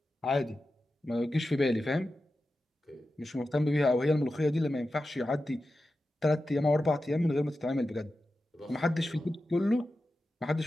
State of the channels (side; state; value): both; normal; correlation 0.92